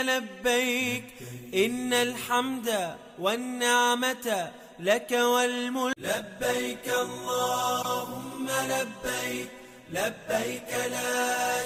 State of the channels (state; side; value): identical; both; correlation 1.00